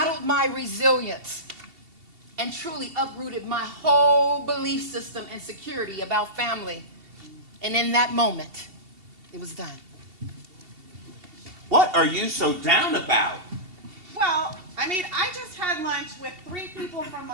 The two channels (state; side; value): late; left; 2.7 ms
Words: my resilience and truly uprooted my whole belief system and security about family. And in that moment, it was done. What are you so down about? Well, I just had lunch with 3 people from